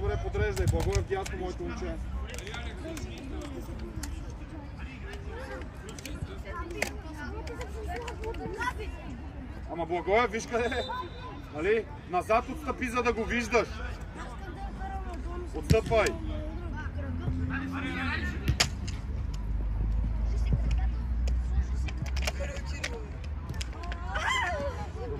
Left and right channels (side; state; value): both; identical; correlation 1.00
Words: подреждай. Благоев дясно, моето момче. Ама Благоев, виж къде е. Нали? Назад отстъпи, за да го виждаш. Отстъпвай.